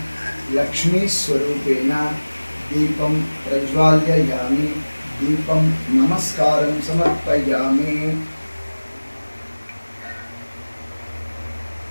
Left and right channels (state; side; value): inverted; both; correlation -1.00